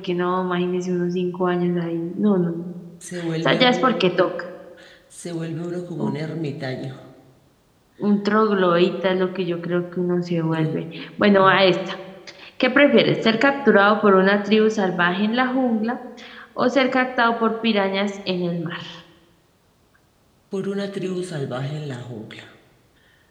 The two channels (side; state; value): both; identical; correlation 1.00